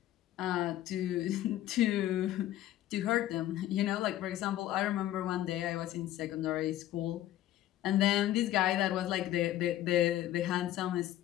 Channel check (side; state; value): right; quieter; 13.4 dB